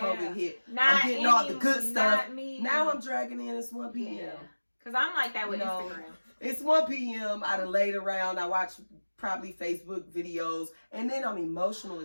hit. Not I'm getting all the good not stuff. Me. Now I'm dragging in. It's 1 p.m. Yeah. Cause I'm like that with You know, Instagram. It's 1 p.m. I done laid around. I watch probably Facebook videos, and then I'm emotional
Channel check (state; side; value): inverted; both; correlation -1.00